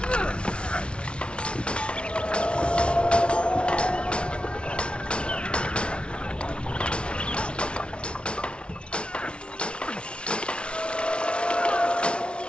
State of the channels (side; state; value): right; late; 0.058 ms